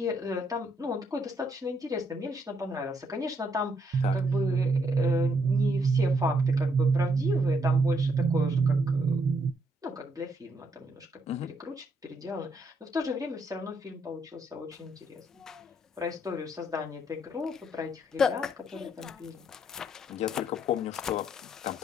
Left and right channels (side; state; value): both; normal; correlation 0.74